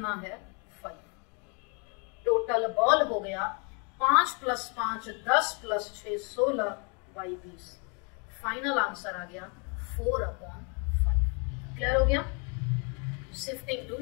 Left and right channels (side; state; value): right; quieter; 35.6 dB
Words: है? 5। टोटल बॉल हो गया 5 + 5 10 + 6 16 बाई 20। फाइनल आंसर आ गया 4/5। क्लियर हो गया? Shifting to